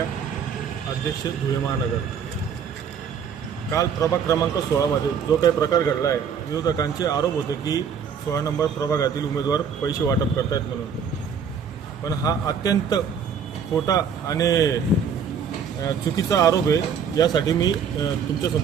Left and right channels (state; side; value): quieter; left; 6.8 dB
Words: अध्यक्ष धुळे महानगर। काल प्रभाग क्रमांक 16 मध्ये जो काही प्रकार घडला आहे, विरोधकांचे आरोप होते की 16 नंबर प्रभागातील उमेदवार पैसे वाटप करतायत म्हणून, पण हा अत्यंत खोटा आणि चुकीचा आरोप आहे। यासाठी मी